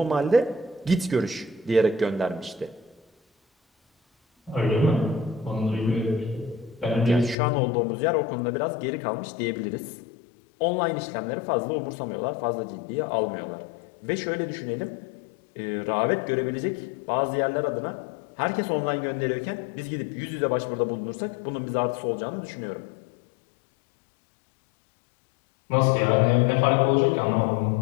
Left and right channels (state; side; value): drops out; right; at 7.4 s